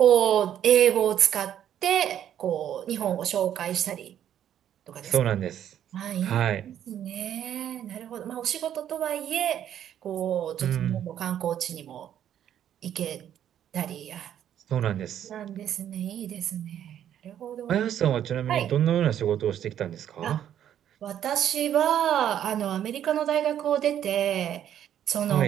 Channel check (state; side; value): quieter; left; 10.3 dB